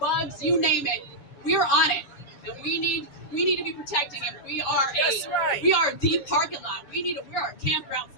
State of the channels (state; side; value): late; right; 7.1 ms